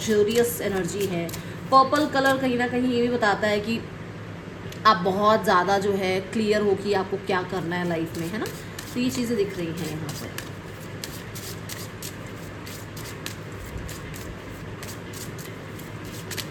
एनर्जी है। पर्पल कलर कहीं ना कहीं ये भी बताता है कि आप बहुत ज़्यादा जो है क्लियर हो कि आपको क्या करना है लाइफ में, है ना। तो ये चीज़ें दिख रही हैं यहाँ पर।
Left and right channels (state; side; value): identical; both; correlation 1.00